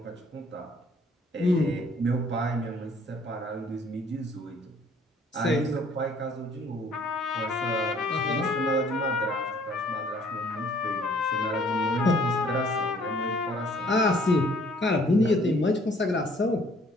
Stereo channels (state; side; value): normal; both; correlation 0.59